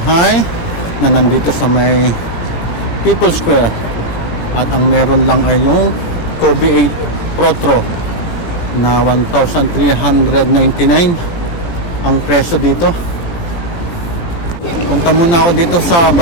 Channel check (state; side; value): late; right; 17 ms